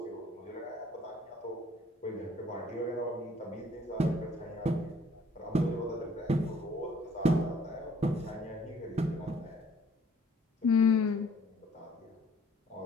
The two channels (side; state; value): both; normal; correlation 0.59